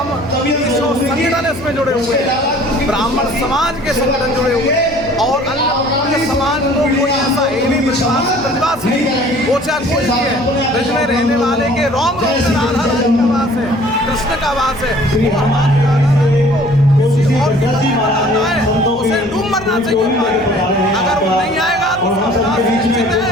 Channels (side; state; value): left; noise; hum, 21 dB below the sound